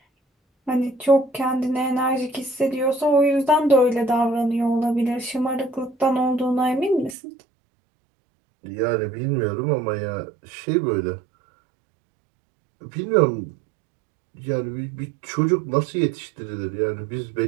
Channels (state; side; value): drops out; left; at 7.2 s